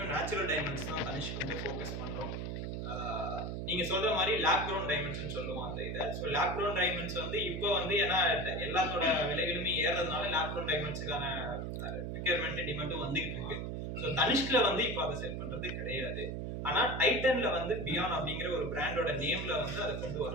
நேச்சுரல் டைமண்ட்ஸ் தான் தனிஷ்க் வந்து ஃபோக்கஸ் பண்றோம். நீங்க சொல்ற மாதிரி லேப் க்ரோன் டைமண்ட்ஸ்னு சொல்லுவோம் அந்த இதை. ஸோ லேப் க்ரோன் டைமண்ட்ஸ் வந்து இப்போ வந்து ஏன்னா எல்லாத்தோட விலைகளுமே ஏறதுனால லேப் க்ரோன் டைமண்ட்ஸுக்கான ரெக்யர்மெண்ட் டிமாண்டும் வந்துகிட்டு இருக்கு. ஸோ தனிஷ்க்ல வந்து இப்போ அதை செல் பண்றது கிடையாது. ஆனா டைட்டன்ல வந்து பியான் அப்படிங்கிற ஒரு பிராண்டோட நேம்ல வந்து அதை கொண்டு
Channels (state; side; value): noise; right; hum, 4 dB below the sound